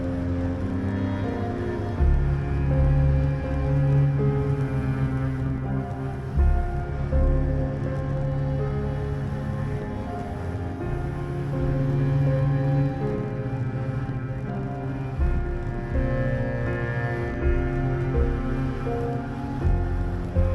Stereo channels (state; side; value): identical; both; correlation 1.00